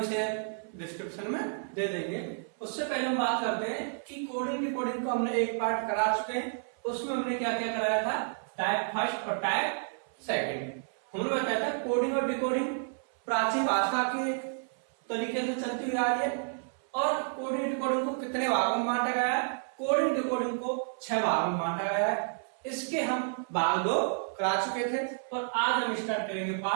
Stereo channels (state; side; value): silent; left; 57 dB below the other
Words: डिस्क्रिप्शन में दे देंगे। उससे पहले हम बात करते हैं कि कोडिंग डिकोडिंग को हमने एक पार्ट करा चुके हैं। उसमें हमने क्या क्या कराया था, टाइप फर्स्ट और टाइप सेकंड। हमने बताया था कोडिंग और डिकोडिंग प्राचीन भाषा के एक तरीके से चलती हुई आ रही है, और कोडिंग डिकोडिंग को कितने भागों में बांटा गया है। कोडिंग डिकोडिंग को 6 भागों में बांटा गया है। इसके हम भाग 2 करा चुके थे, और आज हम स्टार्ट करेंगे